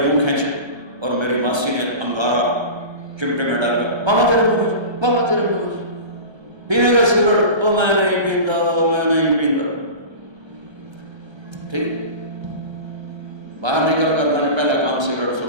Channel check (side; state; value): left; late; 1.3 ms